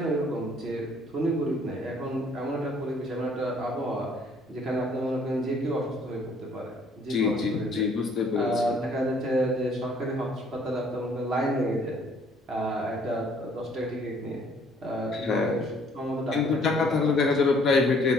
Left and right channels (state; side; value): normal; both; correlation 0.61